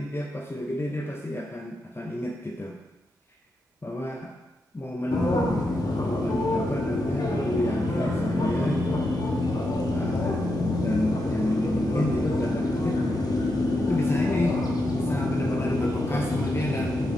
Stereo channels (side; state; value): both; normal; correlation 0.85